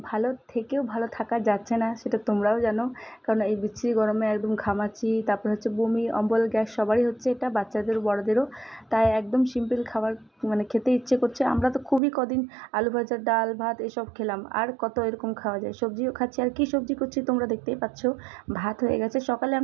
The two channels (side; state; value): left; drops out; at 12.0 s